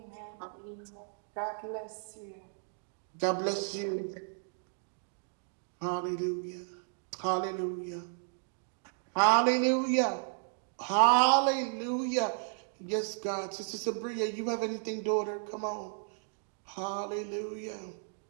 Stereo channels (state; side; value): silent; left; digital silence